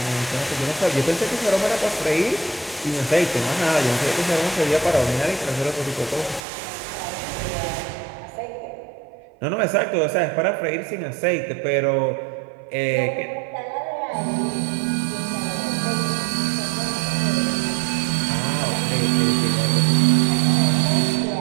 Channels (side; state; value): left; drops out; at 6.4 s